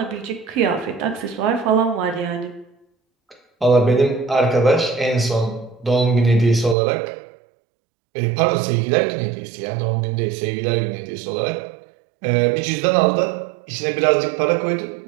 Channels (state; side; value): drops out; left; at 6.8 s